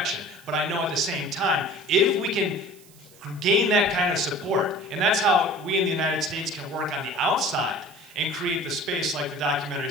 But I know at the same time, if we can gain that kind of support, and that's how we in the United States can work on the outside and create the space, like the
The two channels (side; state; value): right; noise; hiss, 25 dB below the sound